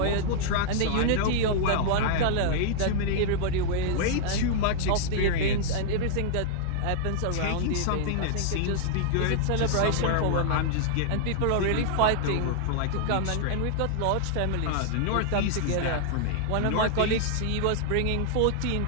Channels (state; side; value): different; both; correlation -0.01